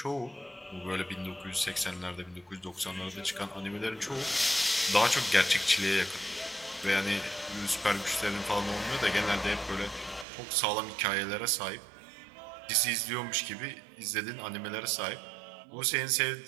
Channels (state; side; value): drops out; left; at 10.2 s